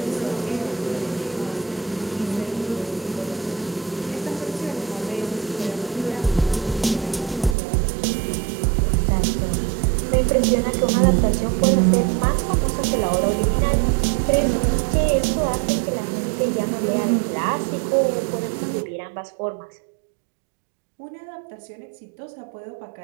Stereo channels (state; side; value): drops out; left; at 7.6 s